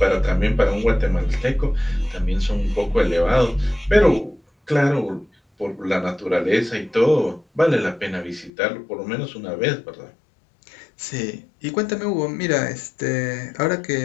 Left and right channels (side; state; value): right; drops out; at 8.5 s